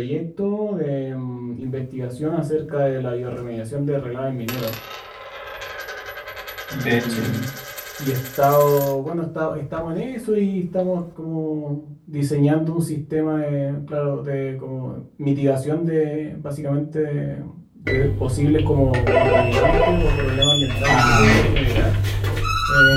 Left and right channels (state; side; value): identical; both; correlation 1.00